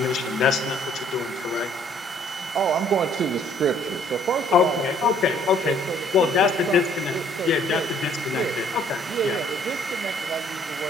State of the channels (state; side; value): normal; both; correlation 0.61